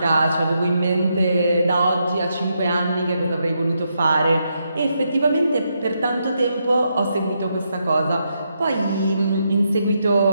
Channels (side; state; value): both; inverted; correlation -0.81